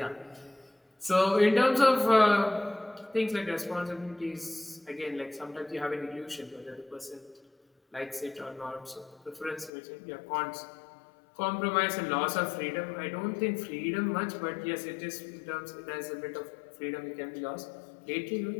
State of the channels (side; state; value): right; drops out; at 9.7 s